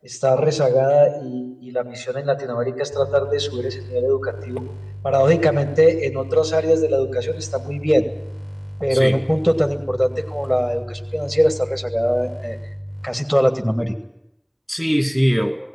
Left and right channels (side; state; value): both; identical; correlation 1.00